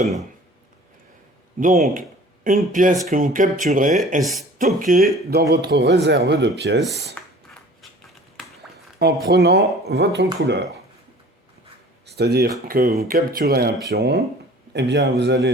Donc, une pièce que vous capturez est stockée dans votre réserve de pièces en prenant votre couleur. C'est-à-dire que vous capturez un pion, et bien vous allez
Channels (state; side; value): normal; both; correlation 0.47